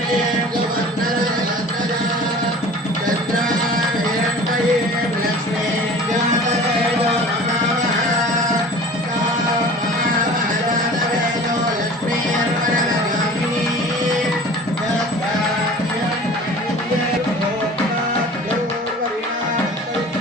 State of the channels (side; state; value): both; normal; correlation 0.42